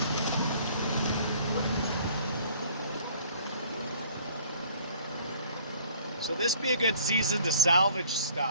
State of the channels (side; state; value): both; inverted; correlation -0.54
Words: So this be a good season to salvage